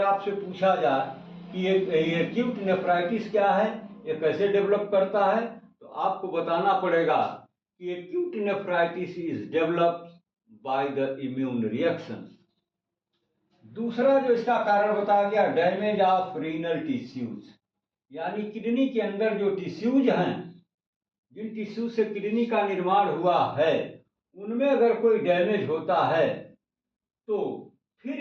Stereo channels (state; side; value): identical; both; correlation 1.00